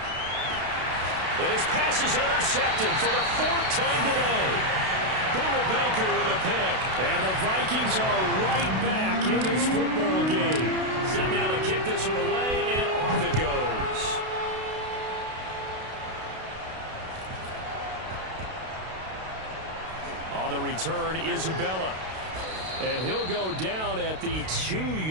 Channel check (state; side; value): late; left; 32 ms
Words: And his pass is intercepted for the 4th time today. Buda Baker with a pick. And the Vikings are right back in this football game. Set now to kick this one away, and off it goes. On the return, Isabella. And he'll go down at the